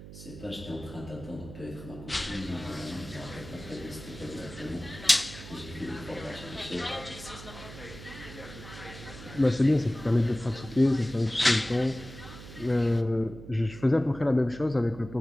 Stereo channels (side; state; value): right; noise; hum, 14 dB below the sound